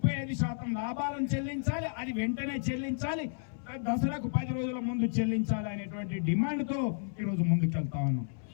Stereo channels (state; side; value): silent; right; 56 dB below the other